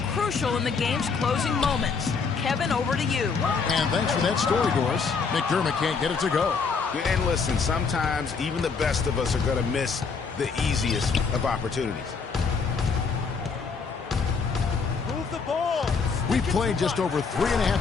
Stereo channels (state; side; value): quieter; right; 5.2 dB